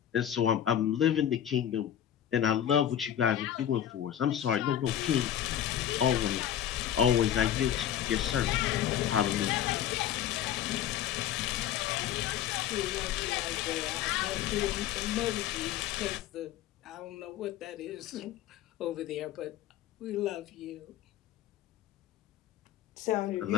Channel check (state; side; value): quieter; right; 10.6 dB